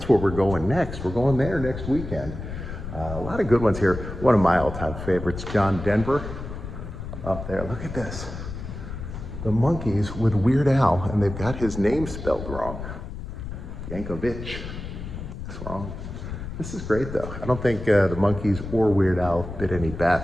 where we're going next. We're going there next weekend. A lot of good ones here. One of my all-time favorites, John Denver, up there. Look at this. The Monkees with Weird Al, and they've got his name spelled wrong. Yankovic. That's wrong. This is great, though. I don't think the Monkees or Weird Al bit any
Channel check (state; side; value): noise; left; rumble, 8 dB below the sound